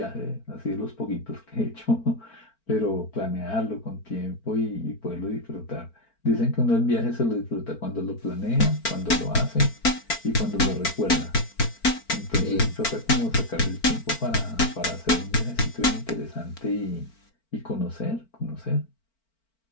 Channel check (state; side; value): late; right; 4.4 ms